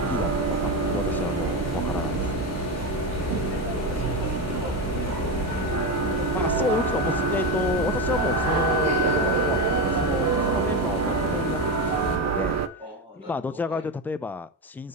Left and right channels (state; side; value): normal; both; correlation 0.14